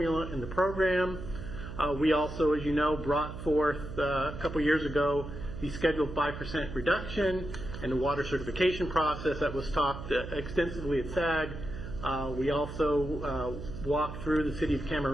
in the program. We also, as you know, brought forth a couple years ago the scheduled 5% reduction and the water certification process that was talked extensively at SAG. We also walked through the City of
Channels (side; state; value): right; noise; hum, 9 dB below the sound